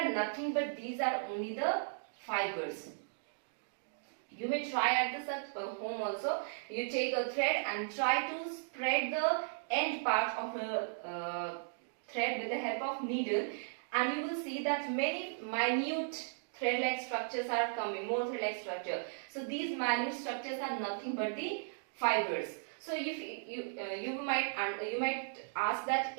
nothing but these are only the fibers. You may try at this at home also. You take a thread and try to spread the end part of a thread with the help of needle, and you will see that many minute thread-like structures are coming, more thread-like structure. So these minute structures are nothing but the fibers. So if you might ask that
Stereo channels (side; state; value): left; silent; digital silence